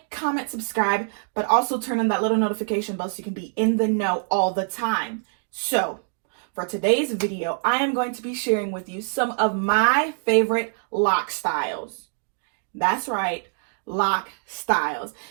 comment, subscribe, but also turn on that little notification bell so you can be in the know all the time. So, for today's video, I am going to be sharing with you some of my favorite lock styles. That's right, lock styles.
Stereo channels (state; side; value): silent; left; digital silence